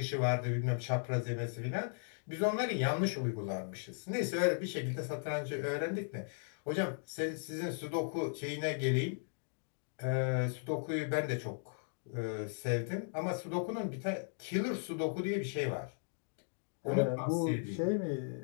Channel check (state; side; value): silent; right; digital silence